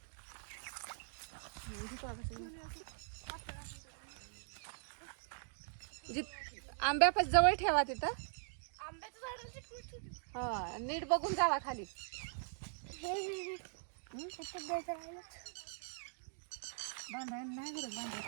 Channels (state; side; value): silent; left; digital silence